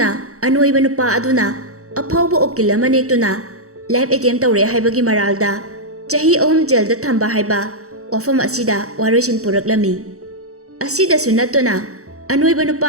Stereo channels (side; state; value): left; late; 0.65 ms